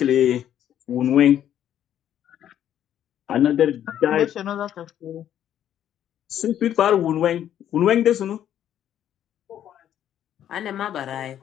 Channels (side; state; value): right; quieter; 10.6 dB